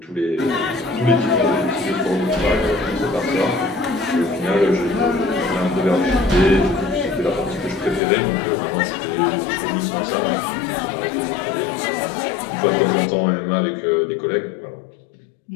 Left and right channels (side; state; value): right; drops out; at 8.0 s